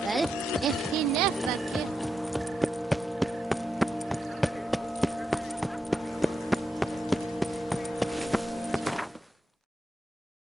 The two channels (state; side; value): normal; both; correlation 0.86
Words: if he never gives...